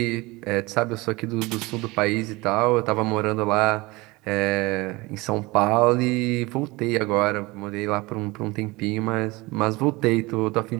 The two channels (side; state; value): left; quieter; 22.7 dB